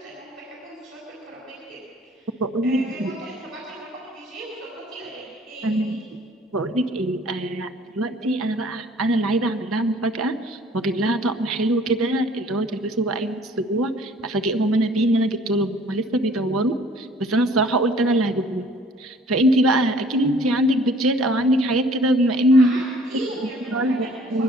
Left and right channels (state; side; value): normal; both; correlation 0.54